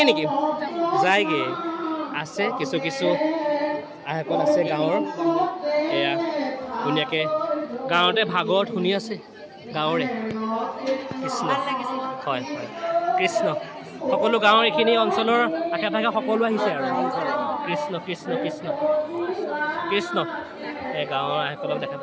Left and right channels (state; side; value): identical; both; correlation 1.00